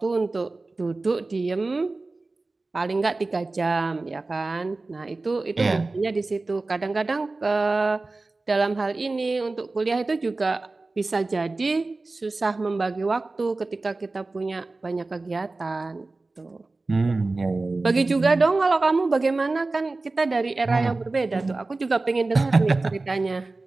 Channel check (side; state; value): left; quieter; 3.4 dB